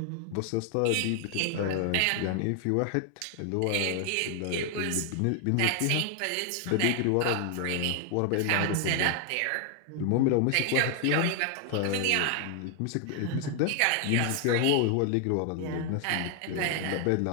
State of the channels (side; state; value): both; different; correlation 0.00